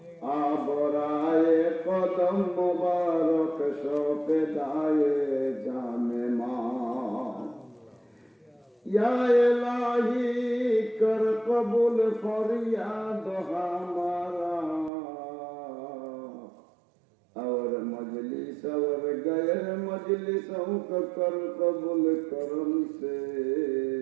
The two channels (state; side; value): drops out; left; at 14.9 s